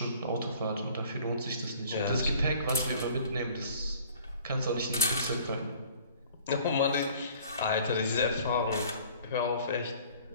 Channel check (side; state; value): both; inverted; correlation -0.51